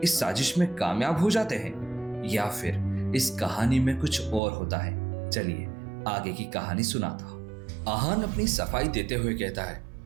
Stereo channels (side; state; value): left; drops out; at 4.4 s